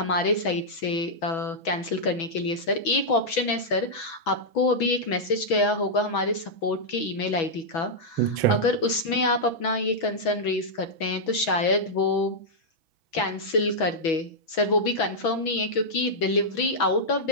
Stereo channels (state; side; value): late; right; 6.1 ms